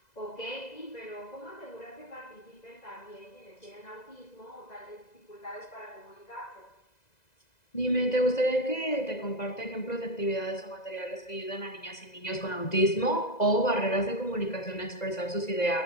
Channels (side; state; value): right; late; 2.0 ms